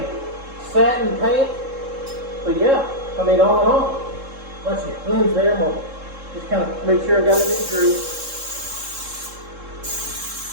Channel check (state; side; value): late; left; 3.7 ms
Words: satin paint, but yeah, I mean, all in all, once you cleanse there, we'll just kind of make sure I got it in through.